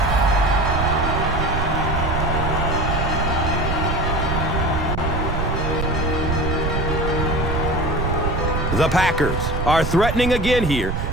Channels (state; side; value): noise; right; rumble, 1 dB below the sound